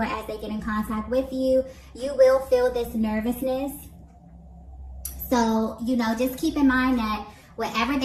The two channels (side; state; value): both; identical; correlation 1.00